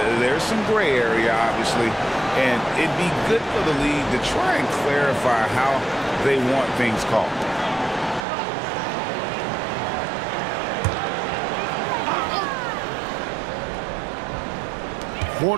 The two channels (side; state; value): left; drops out; at 8.2 s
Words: There's some gray area, obviously, and it'd be good for the league to try and clarify how they want things called.